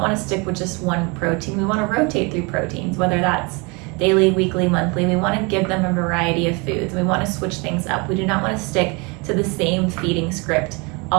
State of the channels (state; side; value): quieter; left; 29.5 dB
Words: to stick with just one protein. We want to rotate through proteins, whether that's daily, weekly, monthly. We want to give them a variety of foods. We want to switch things up. We do not want to stick to the same feeding script